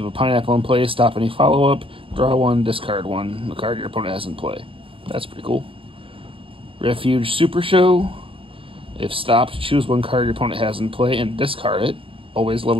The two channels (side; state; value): left; late; 0.26 ms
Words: have a Pineapple in play, stop any follow-up, draw 1, discard 1, the card your opponent has in play. That's pretty cool. Refuge Super Show. If stopped, choose one card your opponent has in play and discard it. Always love